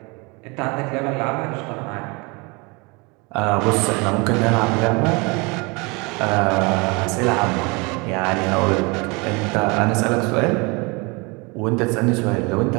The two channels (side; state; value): left; quieter; 28.1 dB